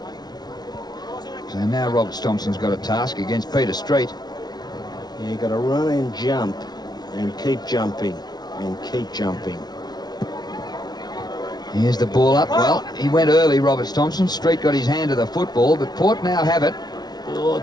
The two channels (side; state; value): right; late; 0.19 ms